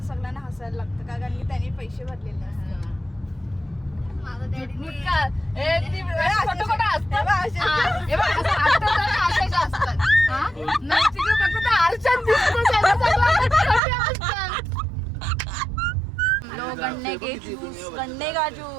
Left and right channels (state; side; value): drops out; left; at 13.8 s